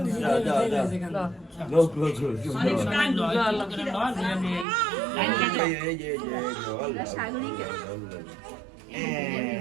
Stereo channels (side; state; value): left; drops out; at 4.7 s